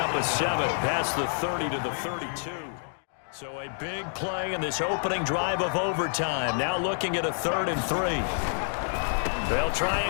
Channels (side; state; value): right; silent; digital silence